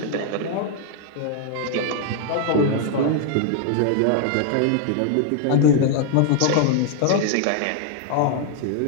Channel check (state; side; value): different; both; correlation 0.00